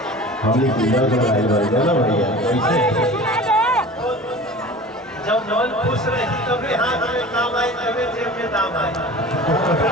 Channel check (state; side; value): normal; both; correlation 0.39